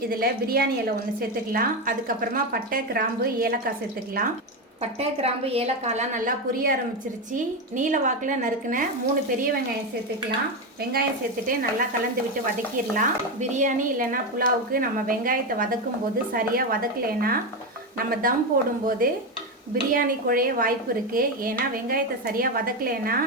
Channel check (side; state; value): both; normal; correlation 0.12